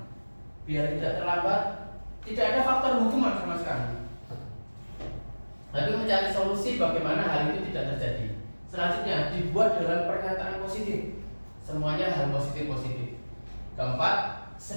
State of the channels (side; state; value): both; inverted; correlation -1.00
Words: Biar tidak terlambat, tidak ada faktor hukuman sama sekali. Tapi mencari solusi bagaimana hal itu tidak terjadi. Selanjutnya dibuat dalam pernyataan positif, semuanya hal positif. Keempat,